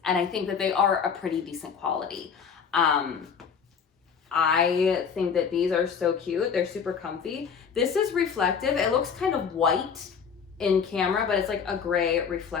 And I think that they are a pretty decent quality. I think that these are so cute. They're super comfy. This is reflective. It looks kind of white in camera, but it's like a gray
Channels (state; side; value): quieter; right; 6.6 dB